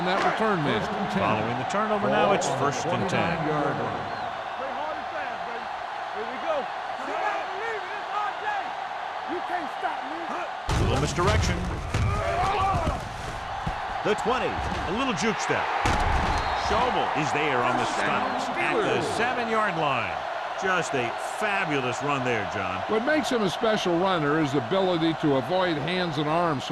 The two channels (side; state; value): both; identical; correlation 1.00